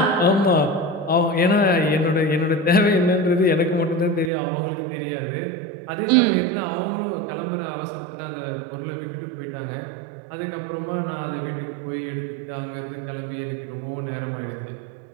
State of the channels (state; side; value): drops out; left; at 4.3 s